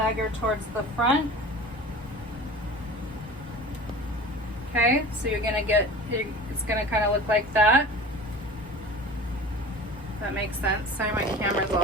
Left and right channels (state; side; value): normal; both; correlation 0.38